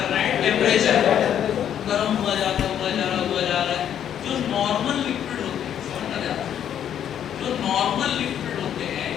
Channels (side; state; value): right; quieter; 9.7 dB